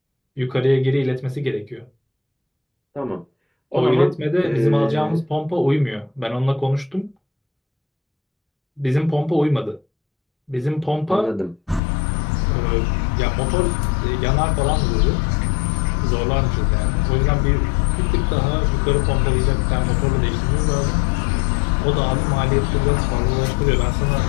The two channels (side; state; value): right; drops out; at 11.8 s